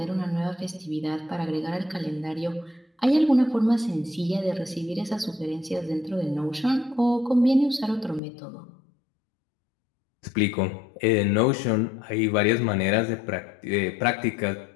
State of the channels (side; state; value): right; drops out; at 8.2 s